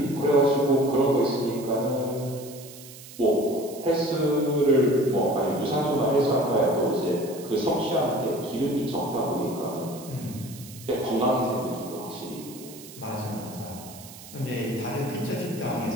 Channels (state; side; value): noise; right; hiss, 17 dB below the sound